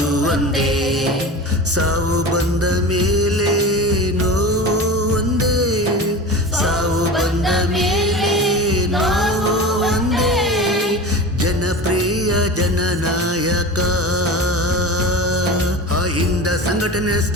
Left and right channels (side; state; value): both; normal; correlation 0.32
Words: ಒಂದೇ ಸಾವು ಬಂದ ಮೇಲೆ ನೋವು ಒಂದೇ ಸಾವು ಸಂಘಟನೆ